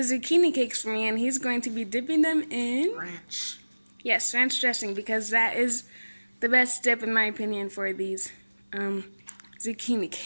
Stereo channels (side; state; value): both; inverted; correlation -1.00